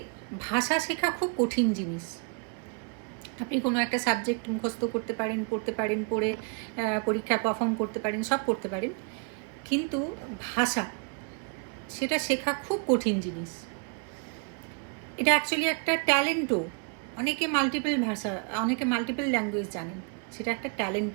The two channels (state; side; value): quieter; left; 35.3 dB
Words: ভাষা শেখা খুব কঠিন জিনিস। আপনি কোনো একটা সাবজেক্ট মুখস্থ করতে পারেন, পড়তে পারেন, পড়ে পরীক্ষায় পারফর্ম করতে পারেন, সব করতে পারেন, কিন্তু ভাষা, সেটা শেখা খুব কঠিন জিনিস। এটা অ্যাকচুয়ালি একটা ট্যালেন্টও। অনেকে মাল্টিপল ল্যাঙ্গুয়েজ জানেন, সেটা একটা